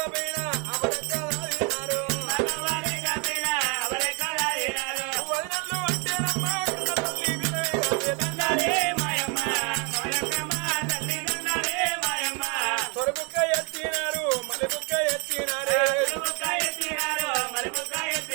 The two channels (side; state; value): left; quieter; 32.8 dB